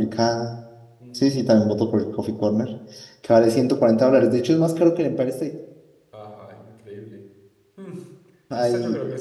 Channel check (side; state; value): both; identical; correlation 1.00